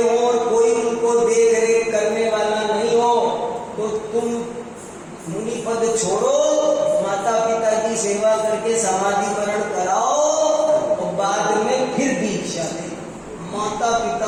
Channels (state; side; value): identical; both; correlation 1.00